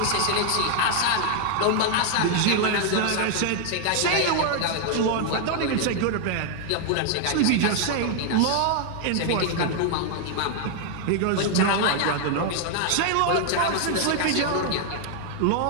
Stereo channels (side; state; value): both; different; correlation 0.00